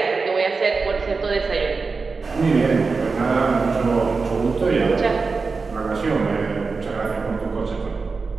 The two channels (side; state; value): left; quieter; 4.4 dB